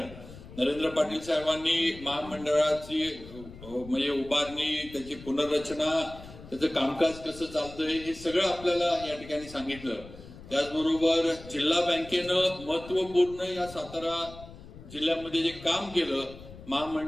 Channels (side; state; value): left; noise; rumble, 16 dB below the sound